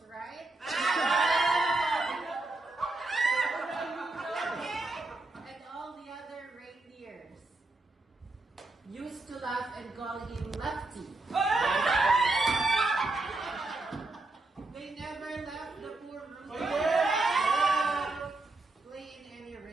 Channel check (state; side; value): quieter; left; 3.1 dB